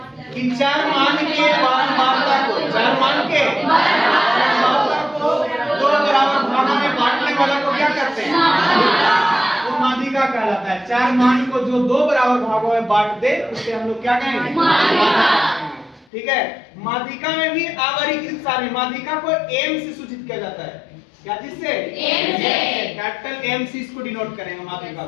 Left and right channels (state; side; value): drops out; right; at 16.1 s